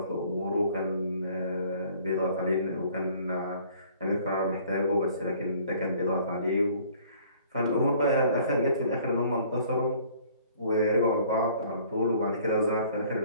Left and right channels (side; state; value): both; inverted; correlation -0.55